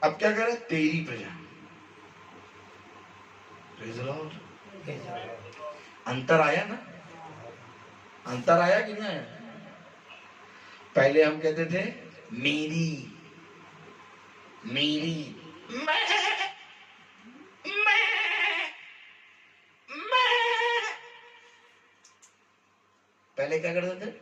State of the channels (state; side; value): identical; both; correlation 1.00